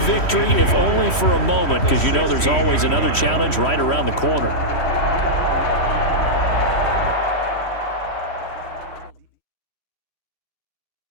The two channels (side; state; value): right; late; 3.1 ms